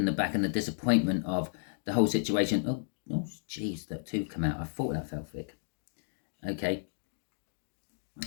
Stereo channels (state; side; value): silent; right; digital silence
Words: the back and the disappointment of the whole situation. Oh, jeez, that two come out. I thought that felt thick. Okay.